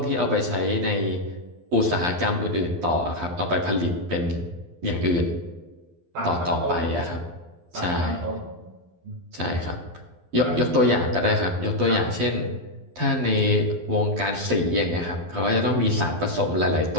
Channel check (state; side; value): late; left; 12 ms